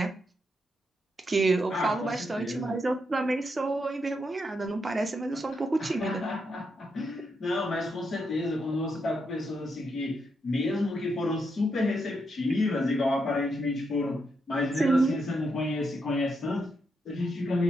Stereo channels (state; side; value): normal; both; correlation 0.81